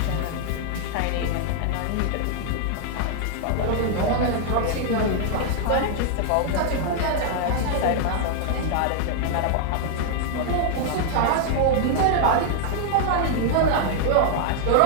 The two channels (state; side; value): different; both; correlation 0.00